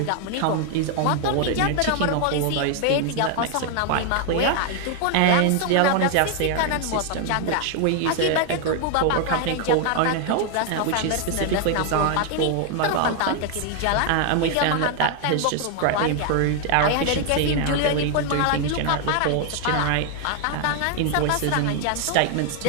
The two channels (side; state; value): both; different; correlation 0.00